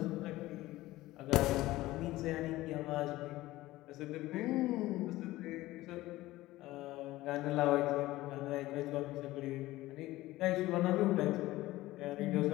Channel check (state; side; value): quieter; right; 17.4 dB